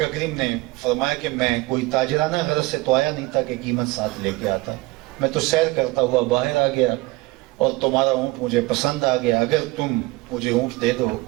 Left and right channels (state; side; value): quieter; left; 22.0 dB